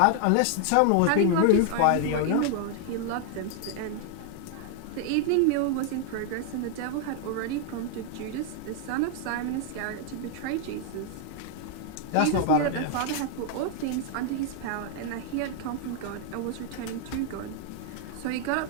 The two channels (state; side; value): different; both; correlation 0.00